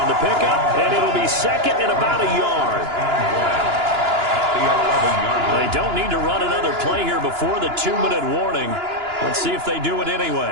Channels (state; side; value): late; left; 2.9 ms